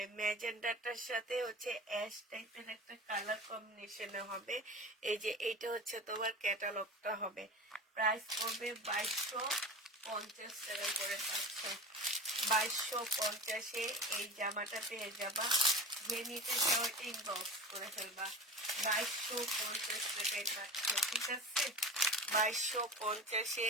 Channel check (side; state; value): both; normal; correlation 0.32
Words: ম্যাজেন্ডাটার সাথে হচ্ছে অ্যাশ টাইপের একটা কালার কম্বিনেশনে হবে। এই যে এইটা হচ্ছে তোমার ক্যাটালগটা হবে। প্রাইস পড়বে 2250 টাকা করে পাচ্ছ। 2250-এ এই জামাটা পেয়ে যাবা। যে নিতে চাও ইনবক্স করে ফেলবা। 2250 টাকায় পাচ্ছ, ঠিক আছে?